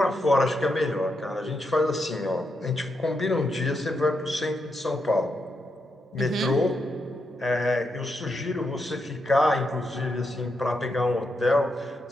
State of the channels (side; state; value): both; normal; correlation 0.83